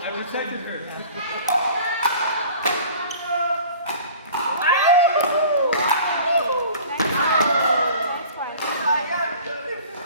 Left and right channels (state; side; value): inverted; both; correlation -0.45